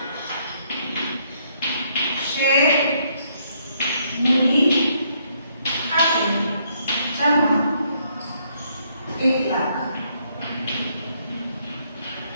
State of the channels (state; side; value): inverted; both; correlation -0.71